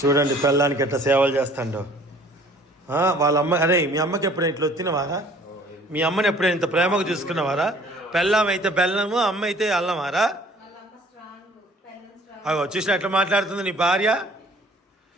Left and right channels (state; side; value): normal; both; correlation 0.54